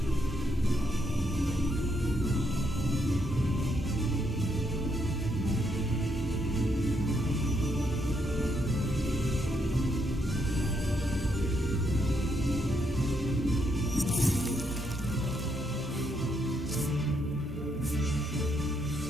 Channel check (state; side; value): normal; both; correlation 0.76